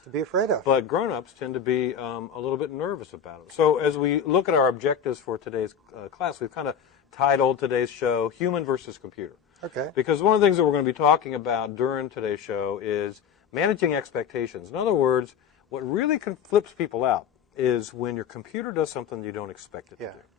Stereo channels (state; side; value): quieter; right; 7.5 dB